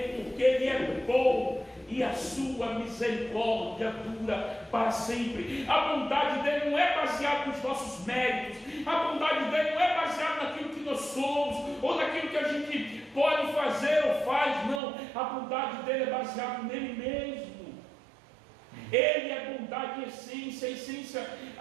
porque Ele é bom e a sua misericórdia dura para sempre. A bondade dele não é baseada nos nossos méritos, a bondade dele não é baseada naquilo que nós somos, ou naquilo que a gente pode fazer ou faz, não. A bondade dele é baseada nele mesmo. Ele é bondade em essência,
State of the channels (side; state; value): left; drops out; at 14.8 s